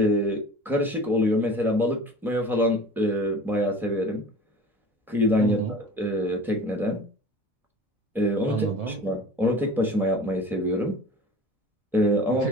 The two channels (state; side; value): normal; both; correlation 0.40